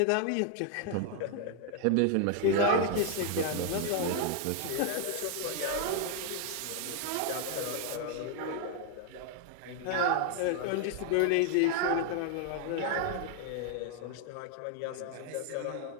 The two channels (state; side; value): different; both; correlation 0.00